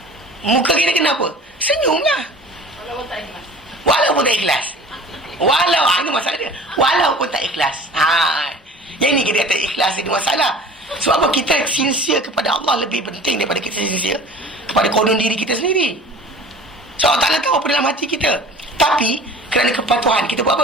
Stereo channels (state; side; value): normal; both; correlation 0.43